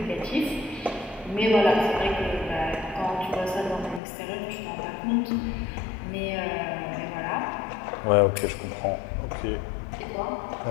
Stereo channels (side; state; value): right; drops out; at 4.0 s